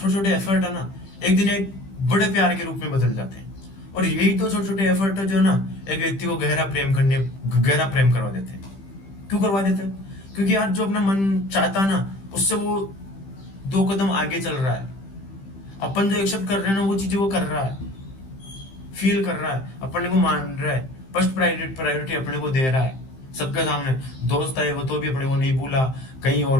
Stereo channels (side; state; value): right; late; 15 ms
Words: छोटे एफर्ट है ना, एक दिन एक बड़े प्यार के रूप में बदल जाते हैं। और यही तो छोटे छोटे एफर्ट है जो ना एक व्यक्ति को गहरा प्रेम करवा देते हैं। क्यों करवा देते हैं? क्योंकि यार जो अपना मन चाहता है ना, उससे वो 2 कदम आगे चल रहा है। अपन जो एक्सेप्ट कर रहे हैं ना, वो चीजें वो कर रहा है, फील कर रहा है, अपने को मान रहा है, फर्स्ट प्रायोरिटी अपने को दे रहा है सबके सामने। दोस्त आए वो तो भी अपने को नहीं भूला, कहीं